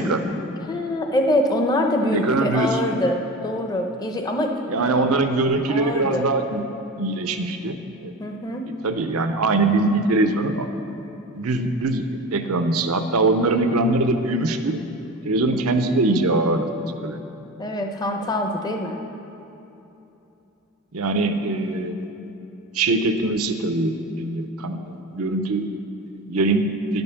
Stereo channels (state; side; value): normal; both; correlation 0.31